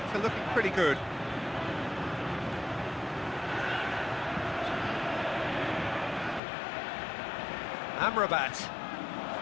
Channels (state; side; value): drops out; right; at 6.4 s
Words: are looking pretty good. Amrabat.